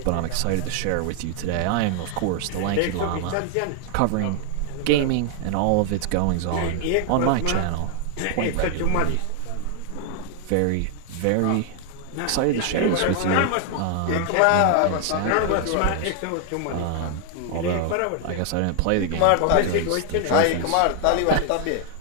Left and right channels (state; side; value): different; both; correlation 0.00